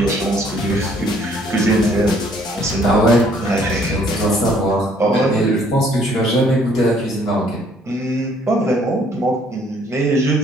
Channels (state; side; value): normal; both; correlation 0.62